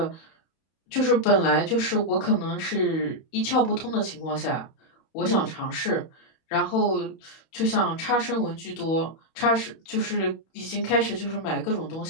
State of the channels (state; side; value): late; right; 31 ms